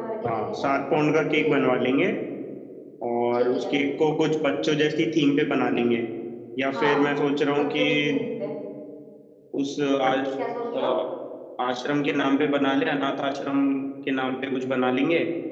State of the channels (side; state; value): both; identical; correlation 1.00